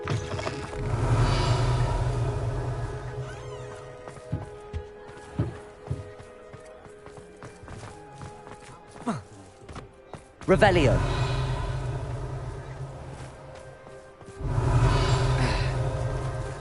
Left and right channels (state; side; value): identical; both; correlation 1.00